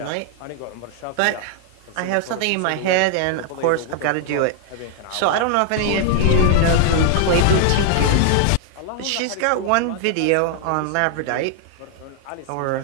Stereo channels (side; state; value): both; different; correlation 0.00